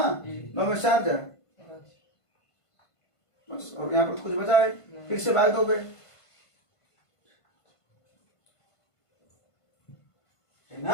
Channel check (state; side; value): late; right; 1.5 ms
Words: 9 में 4 जा बस, और यहाँ पर कुछ बचा है, फिर से भाग दोगे, है